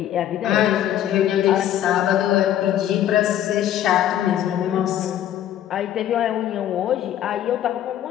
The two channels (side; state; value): right; quieter; 11.4 dB